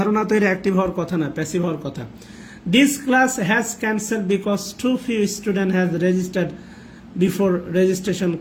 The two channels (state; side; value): identical; both; correlation 1.00